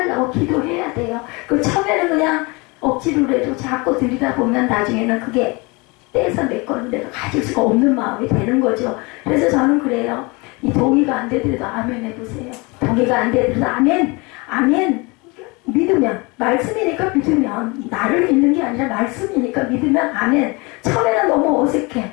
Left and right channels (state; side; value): quieter; right; 27.1 dB